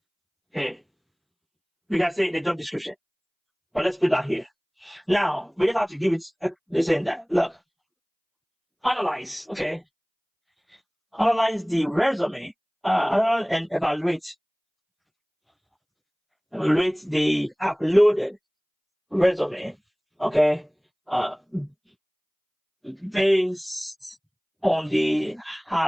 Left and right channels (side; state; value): both; identical; correlation 1.00